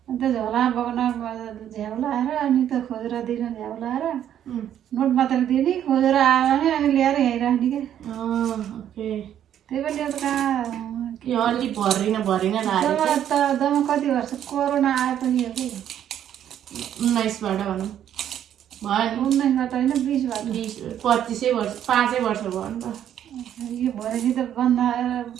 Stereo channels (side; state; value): left; quieter; 10.3 dB